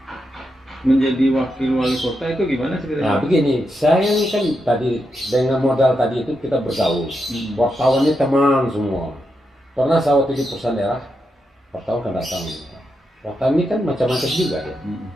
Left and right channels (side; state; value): both; normal; correlation 0.85